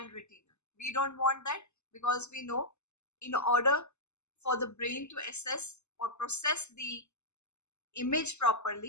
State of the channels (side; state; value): right; late; 0.82 ms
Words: retina. We don't want that because we know in order for the brain to assess or process the image